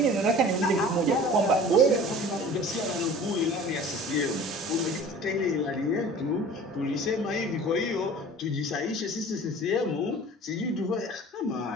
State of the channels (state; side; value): normal; both; correlation 0.43